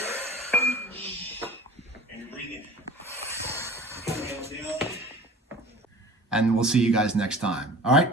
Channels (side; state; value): both; normal; correlation 0.41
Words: And you're breathing. And we'll see you guys next time. All right?